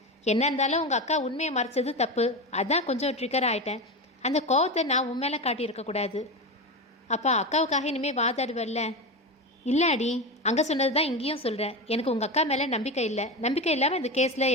என்ன இருந்தாலும் உங்கள் அக்கா உண்மையை மறைச்சது தப்பு, அதான் கொஞ்சம் ட்ரிகர் ஆகிட்டேன். அந்த கோவத்தை நான் உன் மேலே காட்டியிருக்கக்கூடாது. அப்பா, அக்காவுக்காக இனிமேல் வாதாடுவல்ல? இல்லை அடி, அங்கே சொன்னது தான் இங்கேயும் சொல்கிறேன். எனக்கு உங்கள் அக்கா மேலே நம்பிக்கை இல்லை. நம்பிக்கை இல்லாமல் இந்த கேஸில்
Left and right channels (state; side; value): normal; both; correlation 0.20